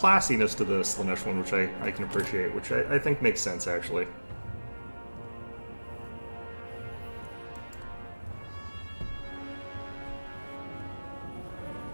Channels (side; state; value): both; inverted; correlation -1.00